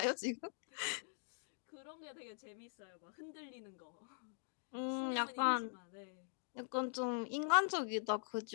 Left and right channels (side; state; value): right; silent; digital silence